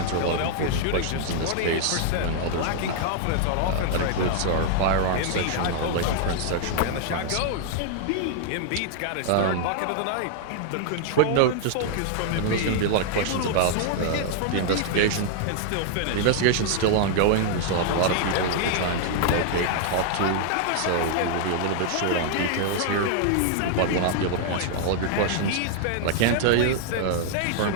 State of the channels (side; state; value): both; different; correlation -0.01